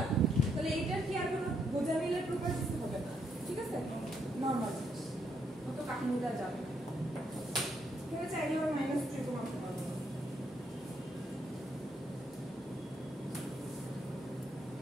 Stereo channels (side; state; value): both; normal; correlation 0.76